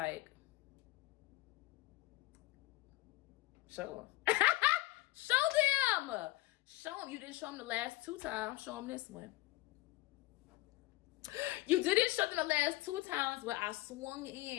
show them. Show them. Show them. You didn't show them the last 2 times. Show them this one. You didn't show them the last 2 times where I swung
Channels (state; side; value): quieter; right; 19.1 dB